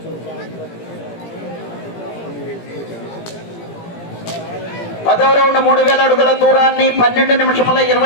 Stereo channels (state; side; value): late; right; 17 ms